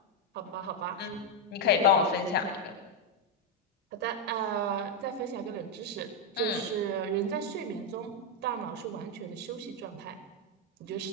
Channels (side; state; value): both; normal; correlation 0.02